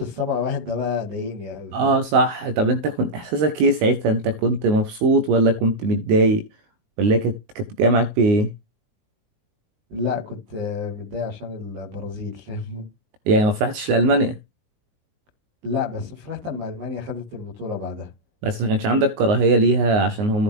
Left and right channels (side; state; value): left; late; 19 ms